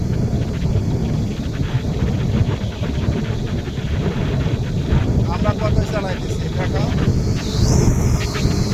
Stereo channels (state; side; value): identical; both; correlation 1.00